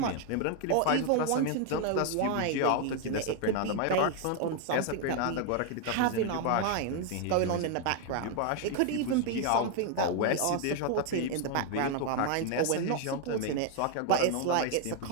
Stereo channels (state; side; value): different; both; correlation 0.01